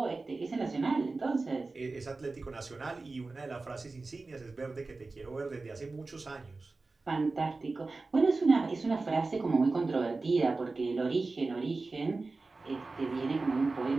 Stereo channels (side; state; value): left; quieter; 3.6 dB